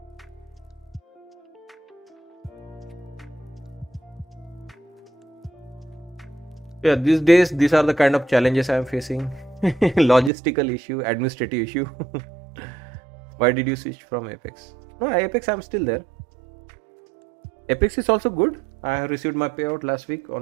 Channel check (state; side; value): drops out; left; at 10.3 s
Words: yeah, these days these are the kind of challenges I am facing. Logistical issue, administrative issue. Why did you switch from Apex? No, Apex I'm still there. Apex is also good. I have received my payout last week